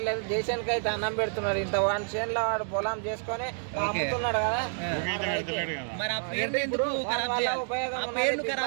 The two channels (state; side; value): silent; left; digital silence